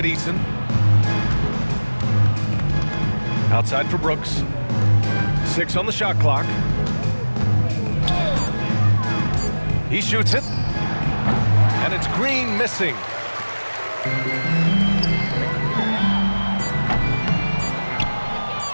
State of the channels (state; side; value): inverted; both; correlation -1.00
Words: Eason. Outside for Brooks. 6 on the shot clock. He shoots it. And it's Green missing.